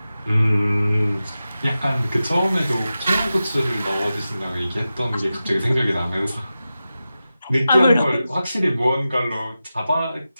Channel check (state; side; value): inverted; both; correlation -0.93